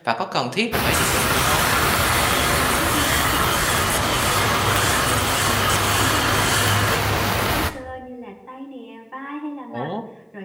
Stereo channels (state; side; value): identical; both; correlation 1.00